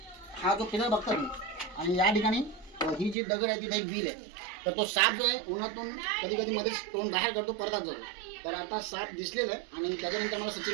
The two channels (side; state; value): left; drops out; at 3.2 s